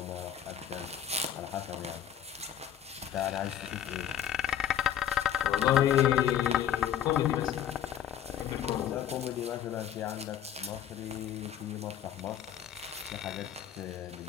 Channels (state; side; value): quieter; right; 10.1 dB